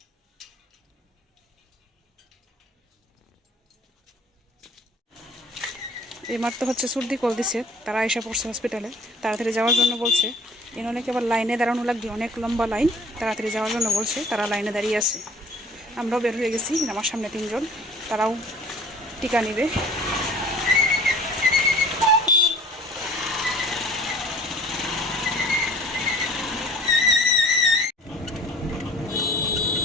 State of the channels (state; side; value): normal; both; correlation 0.50